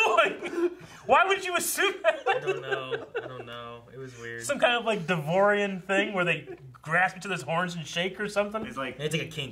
Why would you assume that? I don't know. It was weird. Some kind of like Devorian thing where they grasp each other's horns and shake or something? It's like a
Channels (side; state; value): both; identical; correlation 1.00